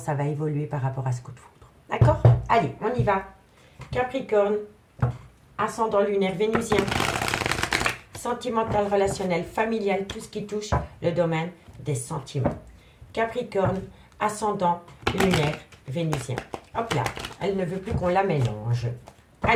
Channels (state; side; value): identical; both; correlation 1.00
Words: va évoluer par rapport à ce coup de foudre. D'accord? Allez, on y va. Capricorne, ascendant lunaire vénusien, sentimental, relationnel, familial, tout ce qui touche le domaine des sentiments. Capricorne, ascendant lunaire vénusien. Hop là, elle ne veut plus qu'on la mélange.